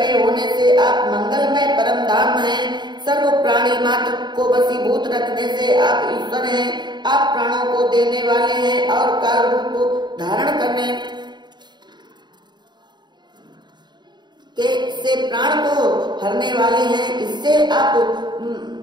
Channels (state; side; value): late; left; 0.21 ms